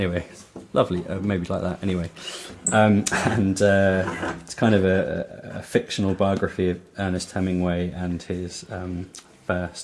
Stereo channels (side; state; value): both; identical; correlation 1.00